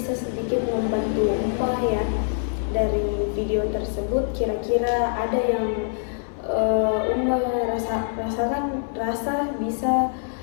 sedikit membantu Uma ya. Dari video tersebut kira-kira ada yang Uma rasa bisa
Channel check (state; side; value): silent; right; 62 dB below the other